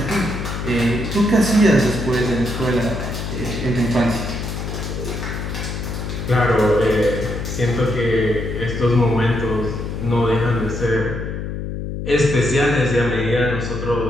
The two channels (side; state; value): left; noise; hum, 5 dB below the sound